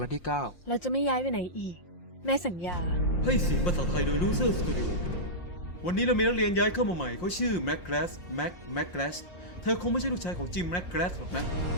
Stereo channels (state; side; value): late; right; 5.7 ms